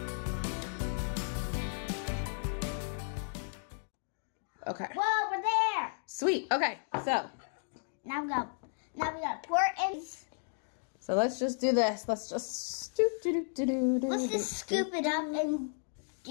Okay. Whoa, we're there. Sweet. Okay, so. Now we gotta pour it in. So let's just do this. Let's just Let's just scoop it up and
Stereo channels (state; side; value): silent; right; digital silence